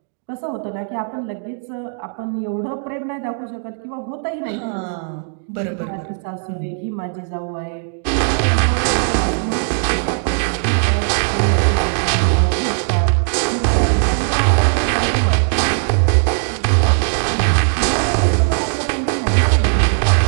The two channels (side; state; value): left; silent; digital silence